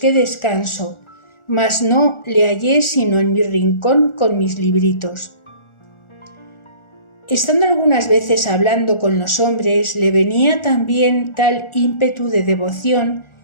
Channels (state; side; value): late; right; 1.4 ms